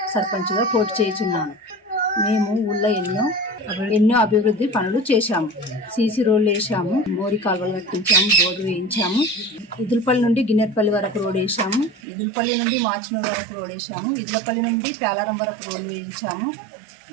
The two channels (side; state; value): left; drops out; at 12.0 s